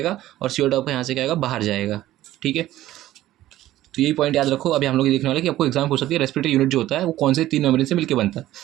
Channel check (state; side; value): quieter; left; 14.6 dB